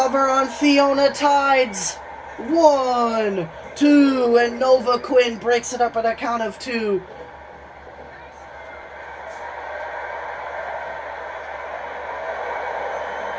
on Fiona Tides. 1, 2, and Nova Quinn breaks it up at a count of 2.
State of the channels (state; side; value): identical; both; correlation 1.00